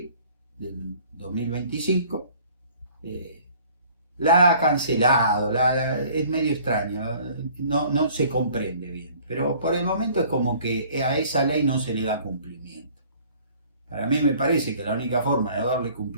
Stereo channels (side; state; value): both; inverted; correlation -0.54